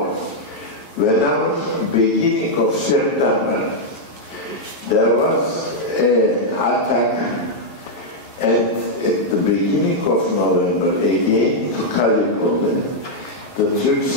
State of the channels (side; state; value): right; late; 11 ms